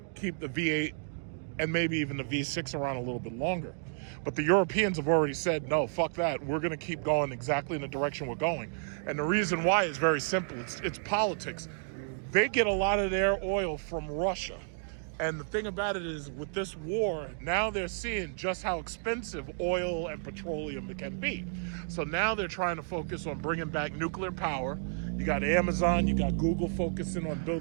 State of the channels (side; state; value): left; silent; digital silence